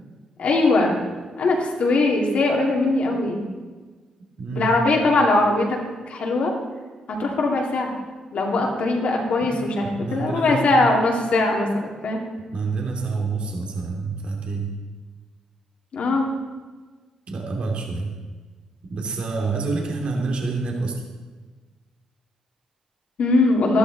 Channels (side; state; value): both; normal; correlation 0.75